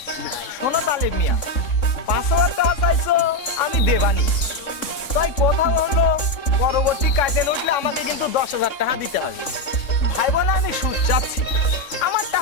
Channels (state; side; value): late; right; 3.6 ms